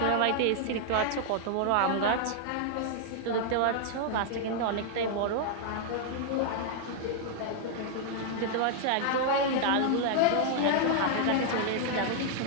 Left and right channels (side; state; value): both; different; correlation -0.01